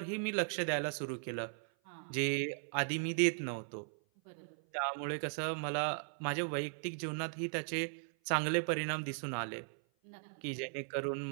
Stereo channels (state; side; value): silent; left; 53 dB below the other